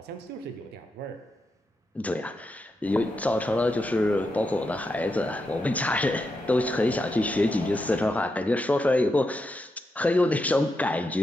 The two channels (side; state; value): both; normal; correlation 0.85